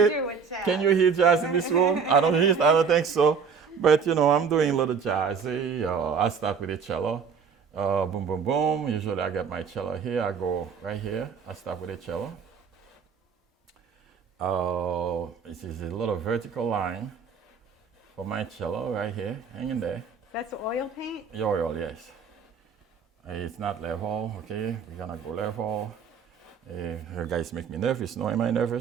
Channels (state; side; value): quieter; left; 6.1 dB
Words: it? Can you hear jazz in this room? I don't think so. But, I'm doing a little jazzy. I start with a cello. Boom, boom, boom. Usually I get my cello here. I go right here. I start with a cello. This is a little vertical line for my cello right here, hanging there. That's oil paint? Oil, yes. It's not level, okay? We're gonna go level. You guys make me nervous. No, am I